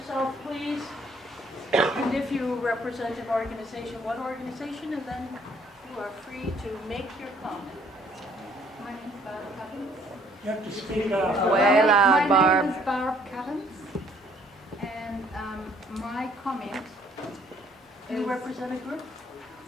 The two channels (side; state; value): both; normal; correlation 0.62